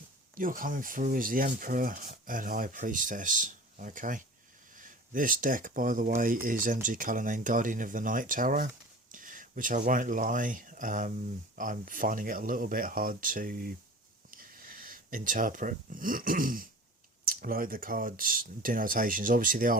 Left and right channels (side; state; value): both; normal; correlation 0.39